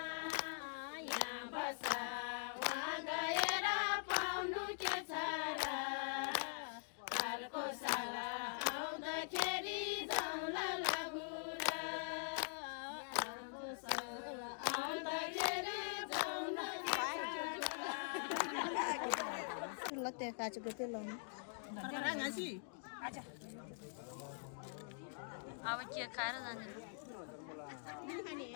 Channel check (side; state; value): right; silent; digital silence